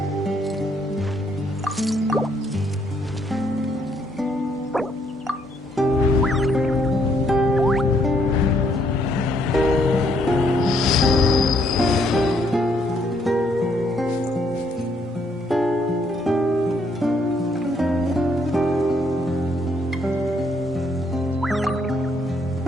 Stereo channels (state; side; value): normal; both; correlation 0.70